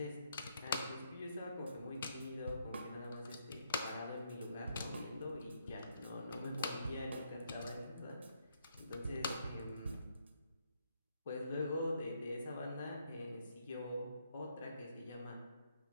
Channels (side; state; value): both; inverted; correlation -0.74